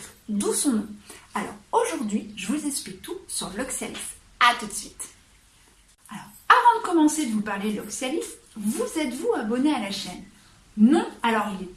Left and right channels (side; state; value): both; identical; correlation 1.00